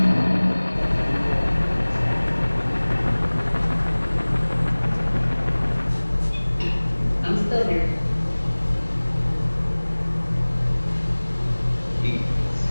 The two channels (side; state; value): both; inverted; correlation -1.00